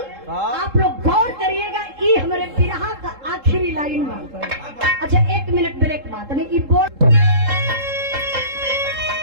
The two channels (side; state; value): left; late; 3.7 ms